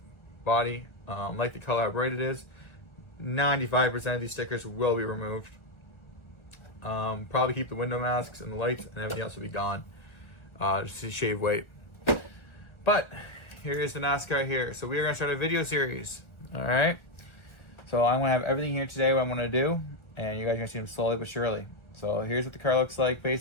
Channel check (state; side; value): late; right; 1.3 ms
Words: body. Like the color how bright it is. 95% of these stickers will be removed. Probably keep the window masks and the lights, and everything else will be gone. Just to shave weight. But here's the NASCAR here. So we are going to start a video series. Alright? So I'm going to have everything here today, what I'm going to do, and you guys are going to see them slowly but surely. So here's what the car looks like,